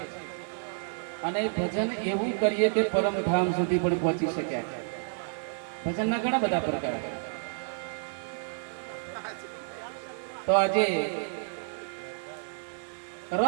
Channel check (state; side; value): silent; left; digital silence